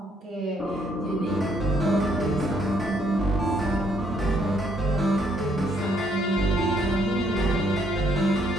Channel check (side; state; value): both; normal; correlation 0.69